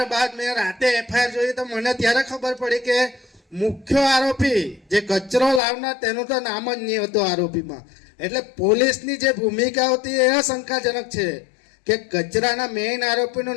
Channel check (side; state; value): right; drops out; at 5.6 s